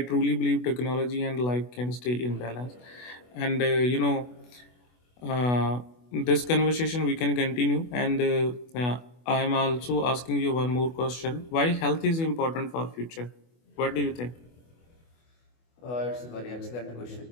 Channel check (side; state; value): right; late; 24 ms